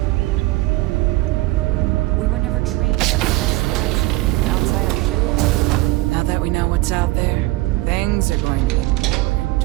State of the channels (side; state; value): left; quieter; 19.8 dB